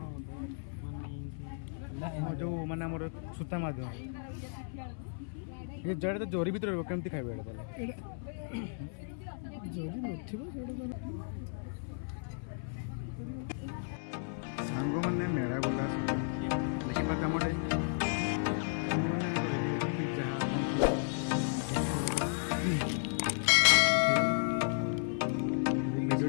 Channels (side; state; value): right; silent; 55 dB below the other